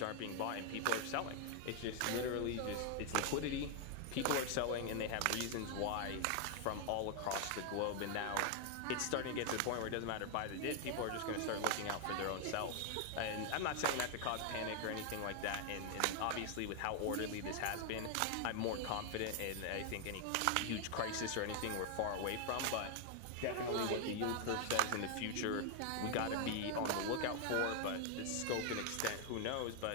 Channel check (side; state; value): both; different; correlation 0.00